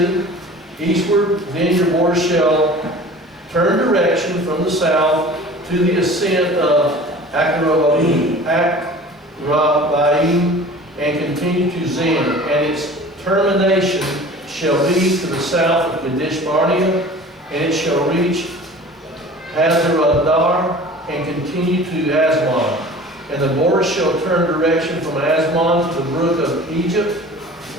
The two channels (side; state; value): both; normal; correlation 0.42